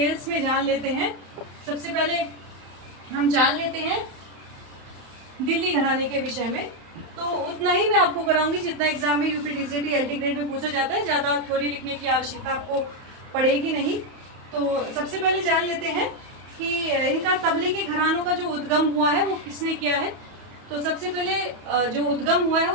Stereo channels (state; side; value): late; left; 31 ms